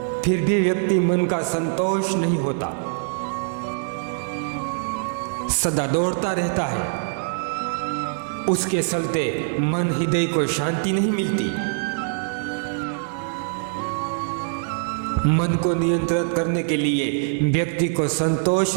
फिर भी व्यक्ति मन का संतोष नहीं होता, सदा दौड़ता रहता है। उसके चलते मन हृदय को शांति नहीं मिलती। मन को नियंत्रित करने के लिए व्यक्ति को संतोष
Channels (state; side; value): silent; left; digital silence